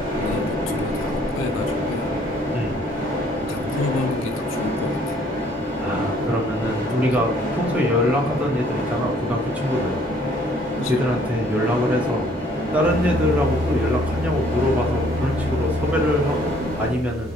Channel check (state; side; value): normal; both; correlation 0.61